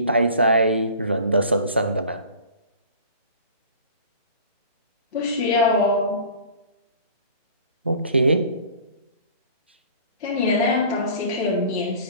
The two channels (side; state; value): both; inverted; correlation -0.44